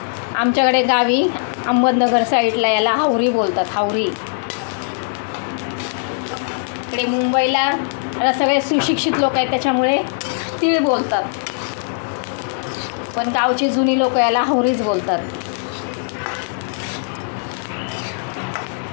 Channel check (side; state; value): right; silent; digital silence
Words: आमच्याकडे गावी अहमदनगर साईडला याला हावरी बोलतात, हावरी. इकडे मुंबईला आता सगळे सुशिक्षित लोक आहेत, त्याच्यामुळे तीळ बोलतात. पण गावची जुनी लोक याला हावरीच बोलतात.